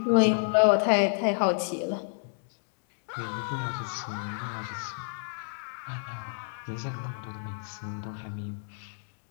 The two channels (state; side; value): silent; right; digital silence